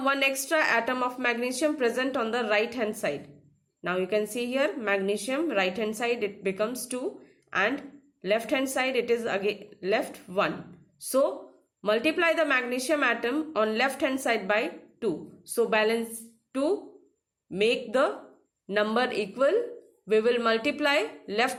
one extra atom of magnesium present on the right hand side. Now you can see here magnesium right hand side it becomes 2 and left hand side it is again left 1. So multiply the magnesium atom on left hand side by 2. So balance, to make the number equal, we will multiply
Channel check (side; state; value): both; identical; correlation 1.00